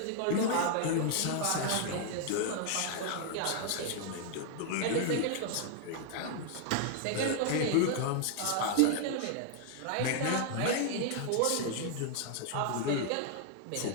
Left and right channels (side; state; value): both; different; correlation 0.00